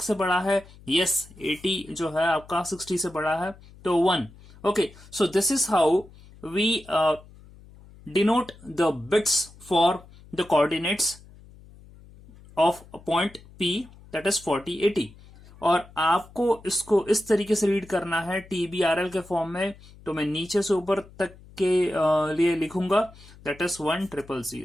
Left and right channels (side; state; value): left; noise; hum, 22 dB below the sound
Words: से बड़ा है? यस, 80 जो है आपका 60 से बड़ा है, तो 1. Okay, so this is how we denote the bits for the coordinates of point P that is 4080. और आपको इसको इस तरीके से रीड करना है TBRL के फॉर्म में. तो मैं नीचे से ऊपर तक के लिए लिखूंगा that is